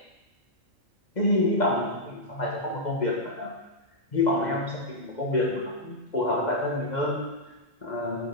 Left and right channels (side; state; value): both; normal; correlation -0.07